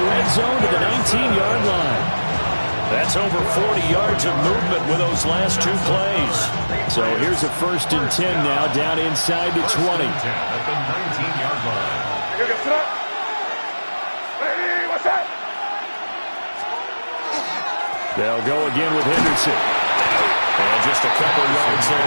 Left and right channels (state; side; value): inverted; both; correlation -1.00